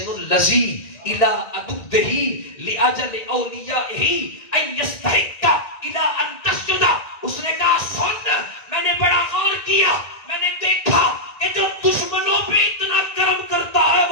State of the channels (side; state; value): right; late; 1.9 ms